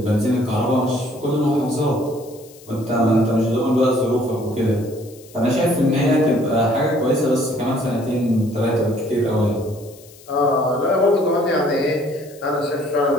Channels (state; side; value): noise; left; hiss, 23 dB below the sound